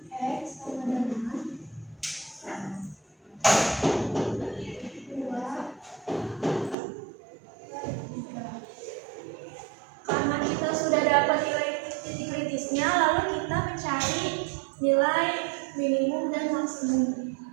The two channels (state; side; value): drops out; left; at 6.8 s